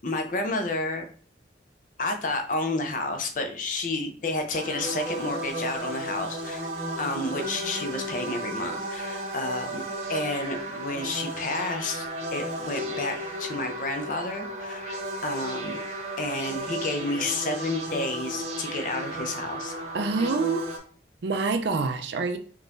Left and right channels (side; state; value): both; normal; correlation 0.09